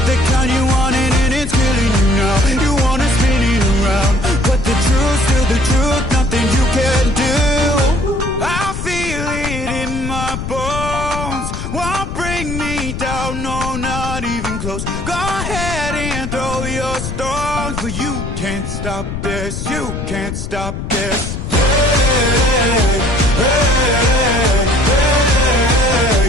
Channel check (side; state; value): left; noise; rumble, 6 dB below the sound